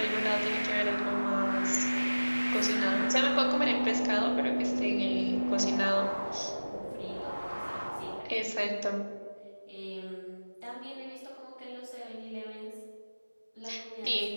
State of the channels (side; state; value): both; inverted; correlation -1.00